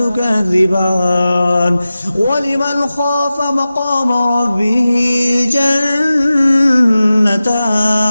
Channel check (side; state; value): both; inverted; correlation -0.95